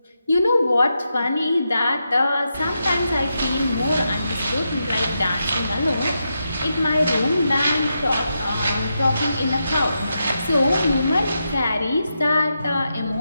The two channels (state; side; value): inverted; both; correlation -0.86